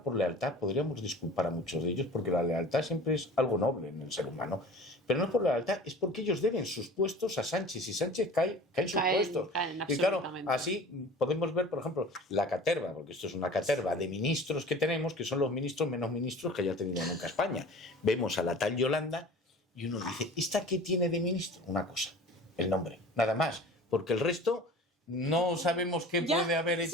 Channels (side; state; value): both; normal; correlation 0.42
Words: por lealtad podríamos disculpar a muchos de ellos, porque la lealtad siempre es algo noble en el ser humano. Pero no es por lealtad, es porque ellos deben sus puestos a Sánchez y Sánchez cae sus puestos. Y claro, así podemos ver, por ejemplo, la caterva, porque esto es una caterva de ministros que tenemos, que son los ministros menos ministros que haya tenido nunca España. Vemos a la tal Yolanda y uno dice, ¿esta qué tiene de ministro? Una cosa, el nombre, nada más, porque el resto no sabemos qué puede haber